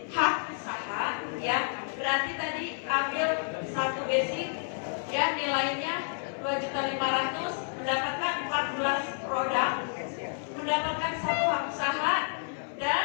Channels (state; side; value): silent; right; 58 dB below the other